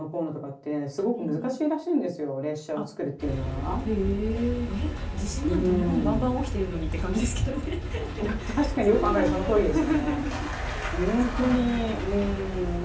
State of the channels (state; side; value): identical; both; correlation 1.00